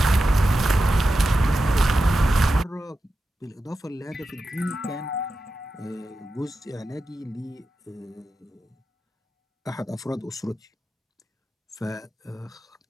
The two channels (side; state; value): both; normal; correlation 0.91